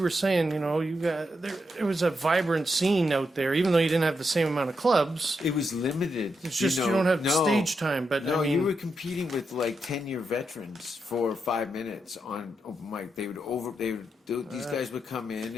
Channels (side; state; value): both; normal; correlation 0.84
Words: were saying, there was a vibrant scene out there, even though you didn't have the same amount of clubs. It was limited. It's just you don't have stage time. But you were competing with 10-year veterans for 5 minutes on open mic. These guys would come in